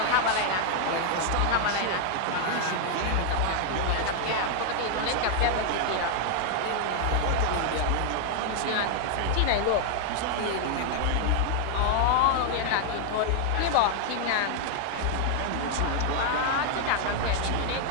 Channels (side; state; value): both; different; correlation 0.00